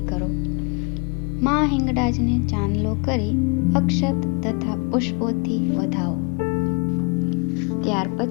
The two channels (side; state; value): right; quieter; 32.5 dB